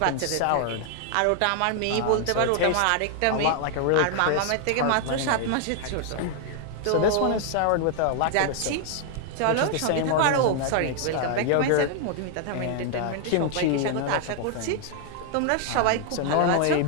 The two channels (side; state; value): both; different; correlation 0.00